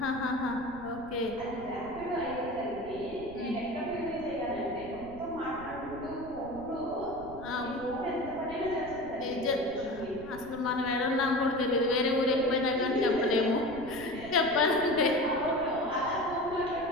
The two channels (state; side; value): noise; right; rumble, 16 dB below the sound